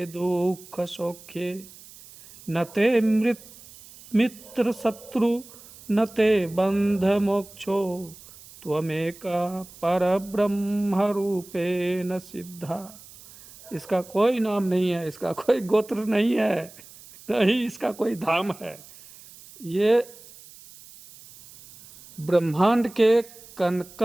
दुख सौख्ये, न ते मित्र शत्रु न ते बंध मोक्षो, त्वमेका परब्रह्म रूपेण सिद्धा। इसका कोई नाम नहीं है, इसका कोई गोत्र नहीं है, नहीं इसका कोई धाम है। ये ब्रह्मांड के कण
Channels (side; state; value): right; noise; hiss, 20 dB below the sound